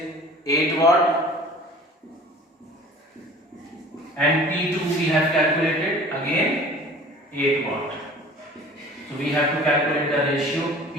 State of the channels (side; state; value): both; normal; correlation 0.46